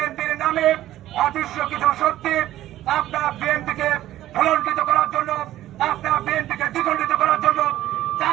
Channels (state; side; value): quieter; left; 14.0 dB